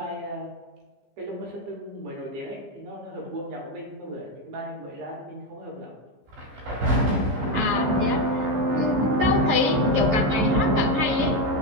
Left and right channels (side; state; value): left; late; 15 ms